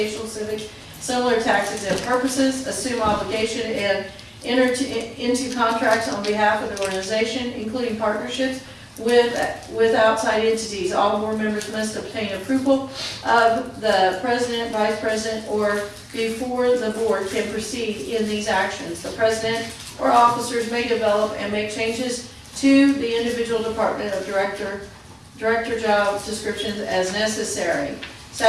civic, similar tax-exempt purposes. Assume obligation and enter into contracts on behalf of the organization, including partnerships with outside entities. All board members must obtain approval of the president, vice president, or before the board can proceed in these actions. The president or officers may develop and make changes to the individual department of director job descriptions as necessary.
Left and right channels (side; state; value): both; identical; correlation 1.00